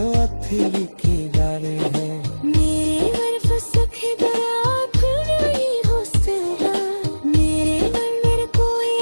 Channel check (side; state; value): both; inverted; correlation -1.00